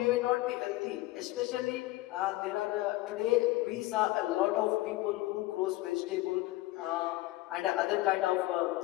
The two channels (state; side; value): quieter; right; 18.3 dB